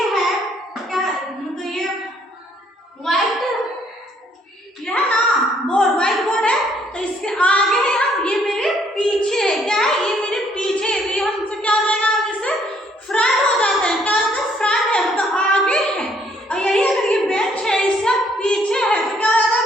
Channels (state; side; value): normal; both; correlation 0.66